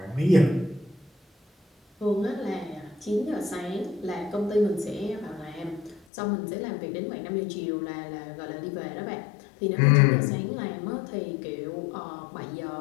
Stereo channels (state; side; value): drops out; right; at 6.1 s